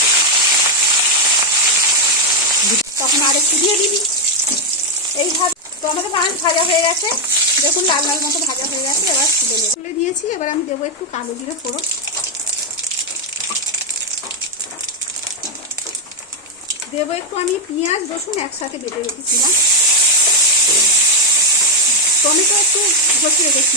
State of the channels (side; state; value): both; normal; correlation 0.03